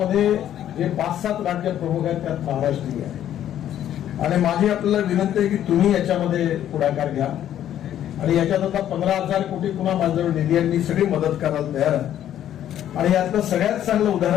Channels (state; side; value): quieter; right; 11.1 dB